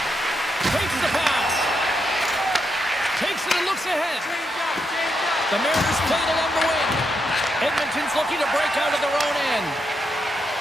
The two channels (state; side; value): normal; both; correlation 0.82